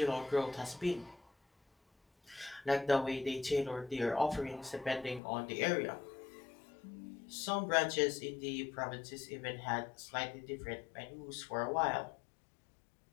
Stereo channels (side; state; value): right; drops out; at 5.2 s